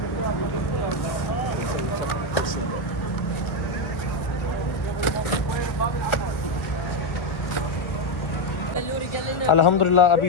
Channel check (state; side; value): late; right; 1.7 ms